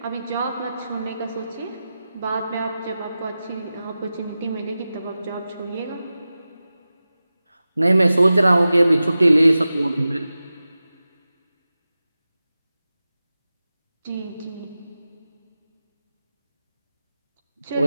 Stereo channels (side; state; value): both; inverted; correlation -0.94